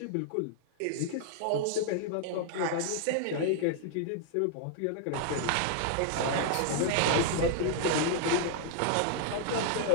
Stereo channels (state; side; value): different; both; correlation 0.00